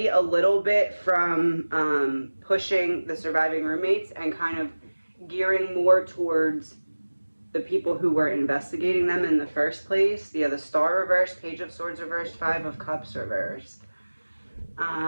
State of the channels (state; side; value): inverted; both; correlation -1.00